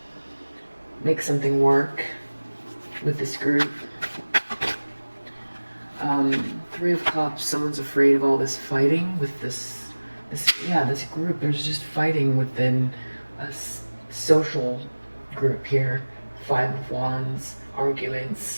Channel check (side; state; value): both; inverted; correlation -1.00